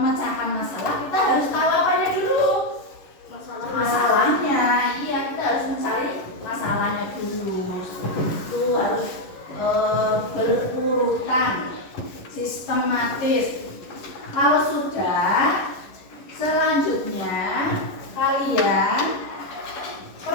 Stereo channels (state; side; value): late; right; 11 ms